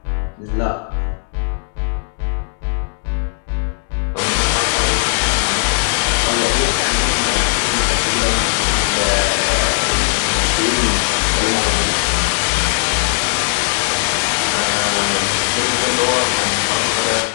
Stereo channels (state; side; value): silent; right; digital silence